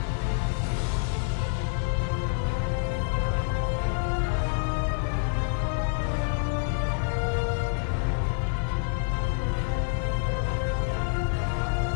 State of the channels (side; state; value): right; silent; digital silence